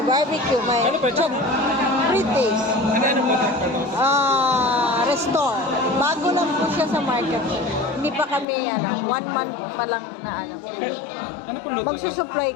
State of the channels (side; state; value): right; drops out; at 8.5 s